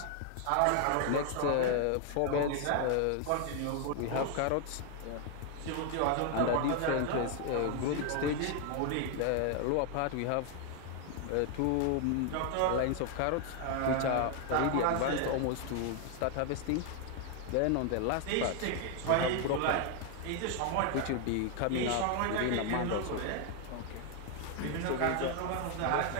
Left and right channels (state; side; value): different; both; correlation 0.00